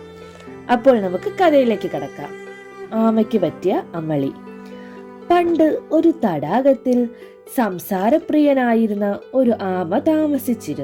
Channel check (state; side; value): identical; both; correlation 1.00